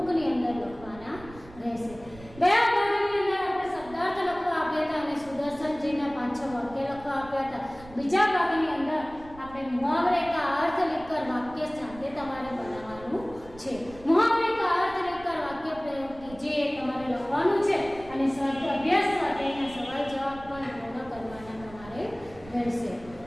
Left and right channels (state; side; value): noise; right; rumble, 19 dB below the sound